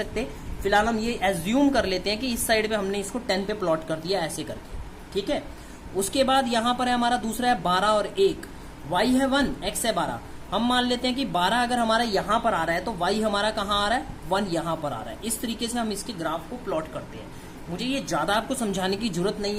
फिलहाल हम ये एज्यूम कर लेते हैं कि इस साइड पे हमने इसको 10 पे प्लॉट कर दिया ऐसे करके, ठीक है। उसके बाद यहाँ पर है हमारा दूसरा है 12 और 1, y है 1 x है 12। हम मान लेते हैं कि 12 अगर हमारा यहाँ पर आ रहा है तो y हमारा कहाँ आ रहा है, 1 यहाँ पर आ रहा है। इस तरीके से हम इसके ग्राफ को प्लॉट करते हैं। मुझे ये ज्यादा आपको समझाने की जरूरत नहीं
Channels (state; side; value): identical; both; correlation 1.00